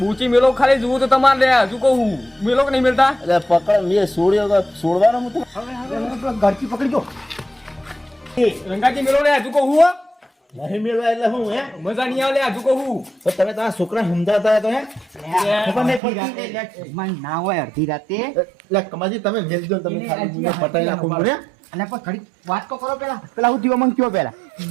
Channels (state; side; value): drops out; left; at 16.0 s